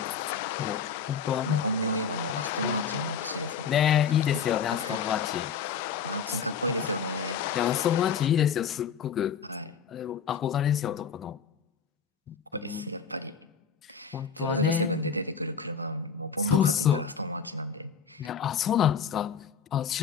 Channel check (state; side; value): quieter; right; 6.6 dB